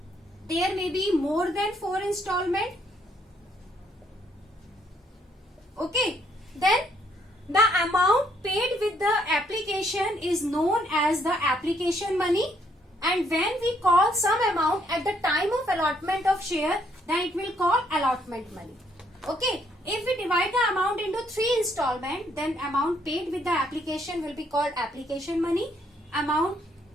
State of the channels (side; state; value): both; normal; correlation 0.70